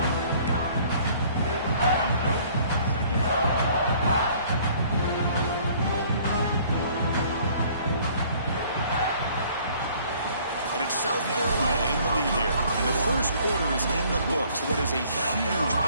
South Carolina in the lead here. And the first quarter is in the books. What is a huge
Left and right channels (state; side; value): inverted; both; correlation -0.57